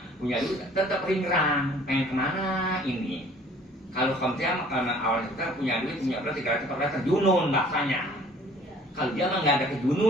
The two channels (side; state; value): both; normal; correlation 0.53